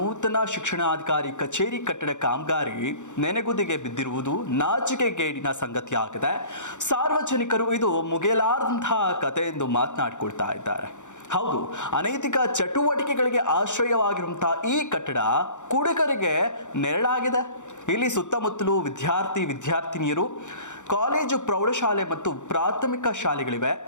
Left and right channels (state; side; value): late; right; 0.85 ms